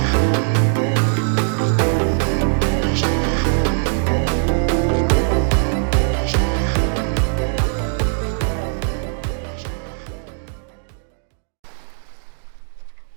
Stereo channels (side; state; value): left; silent; 62 dB below the other